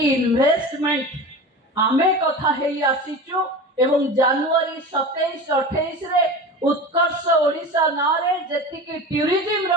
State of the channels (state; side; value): normal; both; correlation 0.31